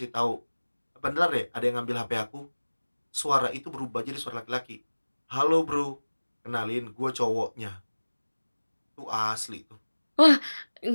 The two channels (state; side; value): inverted; both; correlation -1.00